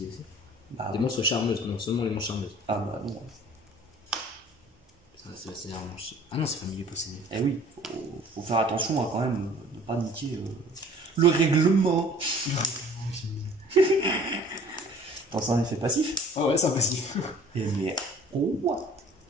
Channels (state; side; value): normal; both; correlation 0.50